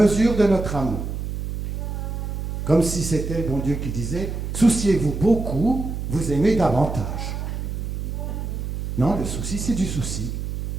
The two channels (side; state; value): right; noise; hum, 4 dB below the sound